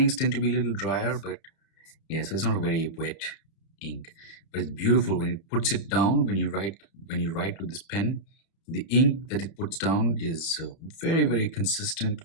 tend to be a little drier, but yeah, so it's not a very wet ink. But it's beautiful when it puts it down. When you write with this pen, the ink that it puts down is very, very consistent.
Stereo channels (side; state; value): right; late; 31 ms